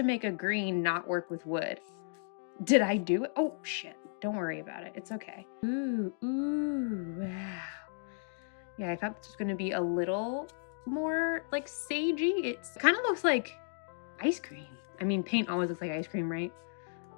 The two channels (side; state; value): right; silent; digital silence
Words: make a green not work with wood. Did I do it? Oh shit. Don't worry about it. It's okay. Ooh, wow. Yeah, I thought this was gonna be a little more like sagey. It kind of looks like ice cream. I mean, paint always looks like ice cream, right?